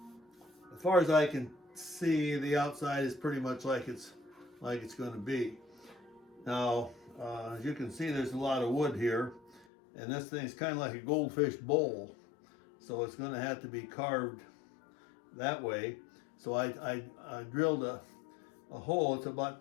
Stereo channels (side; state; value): right; drops out; at 9.7 s